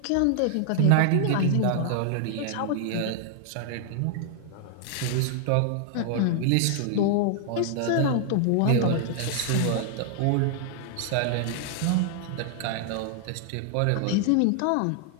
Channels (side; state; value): both; different; correlation 0.00